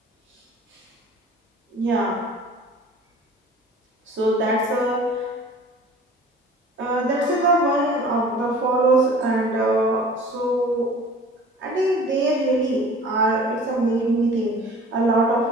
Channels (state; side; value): normal; both; correlation 0.46